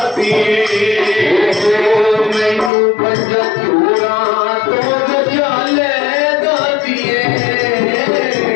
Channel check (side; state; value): right; drops out; at 2.7 s